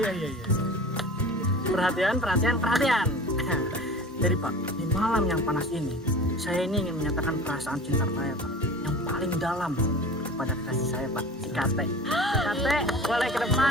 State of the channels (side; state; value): both; normal; correlation 0.38